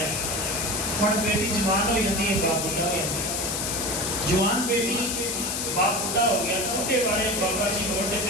ہے ہن بیٹی جوان ہو جاتی ہے باپ بڑھا ہو جاتا ہے جوان بیٹی باپ بڑھا ہو گیا بوڑھے والے بابا جی موٹے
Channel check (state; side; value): noise; left; hiss, 1 dB below the sound